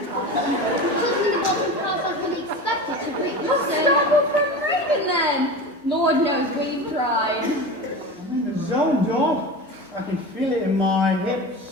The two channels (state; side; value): normal; both; correlation 0.29